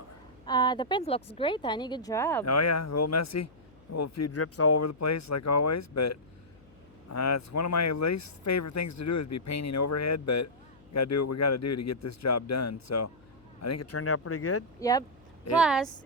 The paint looks great, honey. Good job. Oh yeah, a little messy. A little few drips all over the place like always, but it's one of my least favorite things to do is be painting overhead, but we gotta do what we gotta do to get this job done. So I think it turned out pretty good. Yep. Plus,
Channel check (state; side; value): noise; left; hum, 27 dB below the sound